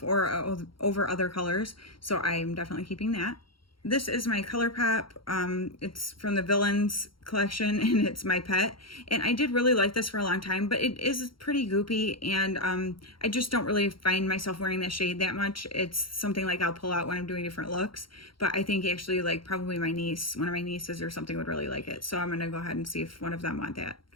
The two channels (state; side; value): late; right; 0.73 ms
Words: or over other colors. So I'm definitely keeping that. This is my Colourpop. It's from the Villains collection, and it's my pet. And I did really like this for a long time, but it is pretty goopy, and I just don't really find myself wearing that shade that much. It's something like I'll pull out when I'm doing different looks, but I think actually like probably my niece, one of my nieces or something would really like it. So I'm gonna go ahead and see if one of them want that.